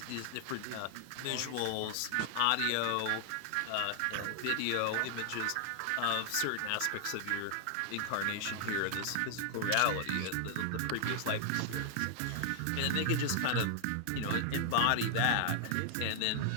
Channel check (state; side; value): different; both; correlation 0.00